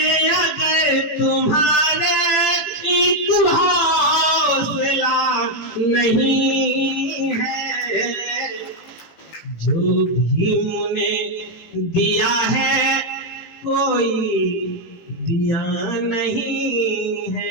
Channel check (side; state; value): right; late; 18 ms